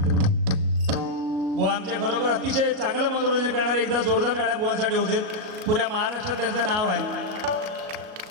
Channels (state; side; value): late; left; 37 ms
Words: बुवा आमच्या खरोखर अतिशय चांगलं मनोरंजन करणारे, एकदा जोरदार टाळ्या बुवांसाठी होते. पुऱ्या महाराष्ट्रात त्यांचं नाव आहे.